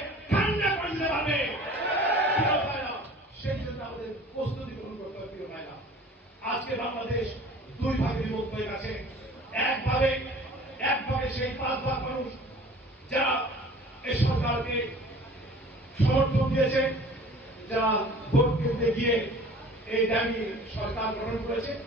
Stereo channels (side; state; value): both; normal; correlation 0.46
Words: ঠান্ডা করে দিতে পারবে। প্রিয় ভাইরা, সেই জন্য আমাদের প্রস্তুতি গ্রহণ করতে হবে। প্রিয় ভাইরা, আজকে বাংলাদেশ 2 ভাগে বিভক্ত হয়ে গেছে। এক ভাগে সেই 5 ভাগ মানুষ যারা এই সরকারকে সমর্থন দিয়েছে, যারা ভোট কেন্দ্রে গিয়ে এই দাবি সরকার গ্রহণ করেছে।